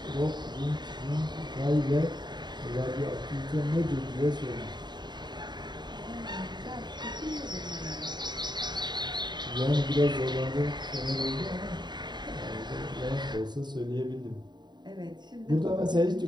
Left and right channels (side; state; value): left; late; 0.21 ms